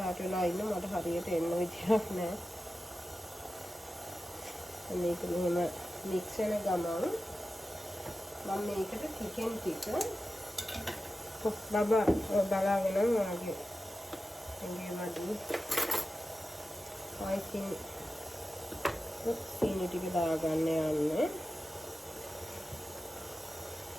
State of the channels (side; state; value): both; normal; correlation 0.93